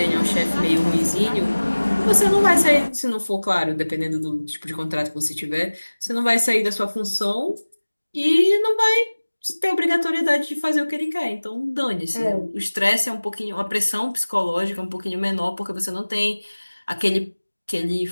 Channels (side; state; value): both; inverted; correlation -1.00